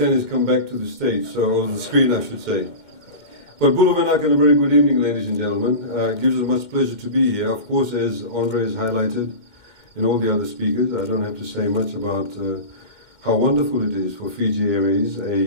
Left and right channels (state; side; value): late; right; 2.1 ms